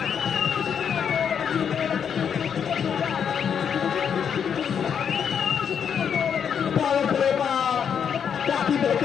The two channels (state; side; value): quieter; right; 7.6 dB